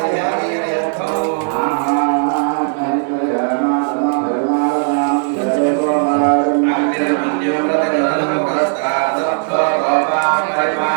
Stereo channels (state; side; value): silent; left; 57 dB below the other